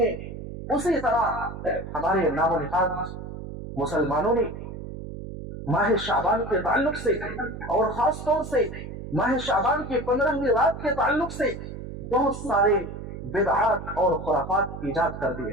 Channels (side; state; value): right; noise; hum, 9 dB below the sound